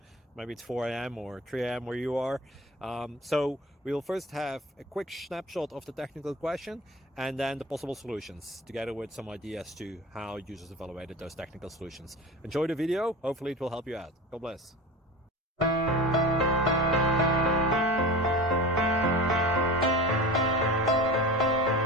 Maybe it's 4 a.m. or 3 a.m. where you are. So we'll first have a quick snapshot of the technical question and then the possible solutions, together with some ideas to how users evaluated those technical solutions. Enjoy the video, hopefully it will help you out. God bless.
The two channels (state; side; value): normal; both; correlation 0.33